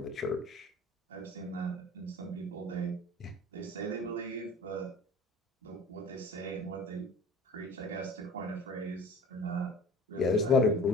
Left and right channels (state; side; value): normal; both; correlation 0.42